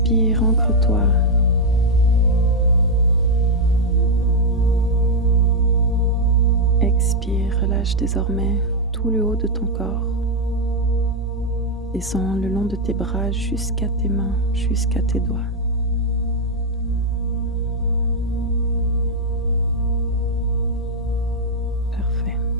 ancre-toi. Expire, relâche désormais tout le haut de ton corps. Descends le long de tes bras jusqu'à tes mains, jusqu'à tes doigts.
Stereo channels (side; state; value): both; normal; correlation 0.00